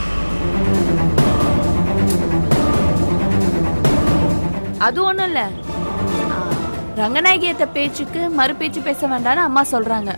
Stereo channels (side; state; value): both; inverted; correlation -1.00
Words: அது ஒண்ணும் இல்ல, ரங்கநாயகியத்த பேச்சுக்கு மறு பேச்சு பேச வேண்டாம்னு அம்மா சொல்றாங்க.